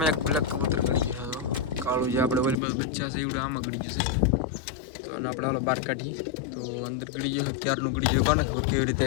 એક બ્લેક કબૂતર ગળી ગયું છે તો કાળું જે આપણે ઓલી બાજુ બચ્ચા છે એવડે આમાં ગળી ગયું છે. તો આને આપણે હાલો બહાર કાઢીએ. તો અંદર ગળી ગયો ક્યારનું ગળી ગયું કોને ખબર કેવી રીતે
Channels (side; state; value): right; drops out; at 2.6 s